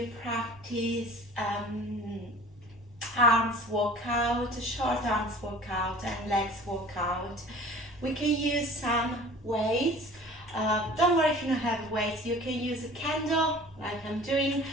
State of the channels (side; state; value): both; normal; correlation 0.44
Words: practice arms workout, short arms workout and legs workout. We can use some weights. Don't worry if you don't have weights. You can use a candle like I'm doing,